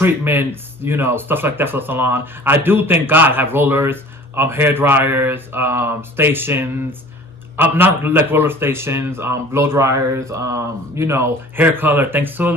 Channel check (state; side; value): normal; both; correlation 0.46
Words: you know, stuff like that for the salon. I do, thank God, have rollers, hair dryers, stations, not like roller stations, blow dryers, you know, hair color. Thanks to